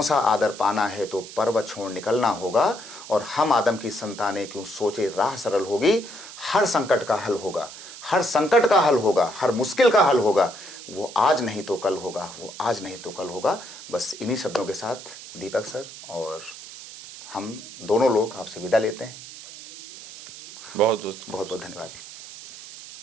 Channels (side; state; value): right; noise; hiss, 14 dB below the sound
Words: सा आदर पाना है तो पर्वत छोड़ निकलना होगा, और हम आदम की संतानें क्यों सोचे राह सरल होगी, हर संकट का हल होगा, हर संकट का हल होगा, हर मुश्किल का हल होगा, वो आज नहीं तो कल होगा, वो आज नहीं तो कल होगा। बस इन्हीं शब्दों के साथ दीपक सर और हम दोनों लोग आपसे विदा लेते हैं। बहुत बहुत बहुत धन्यवाद।